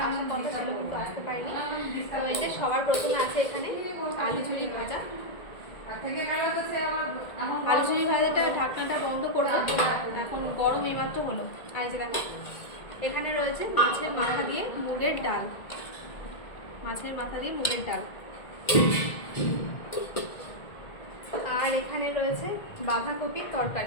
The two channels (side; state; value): right; late; 1.7 ms